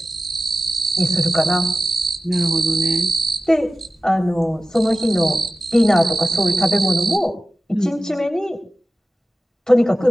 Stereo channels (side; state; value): both; normal; correlation 0.95